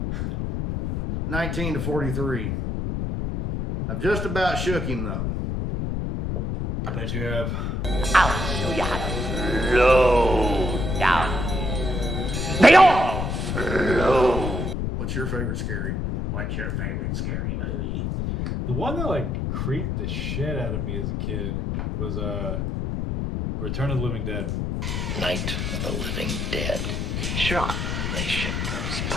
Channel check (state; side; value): noise; left; rumble, 1 dB below the sound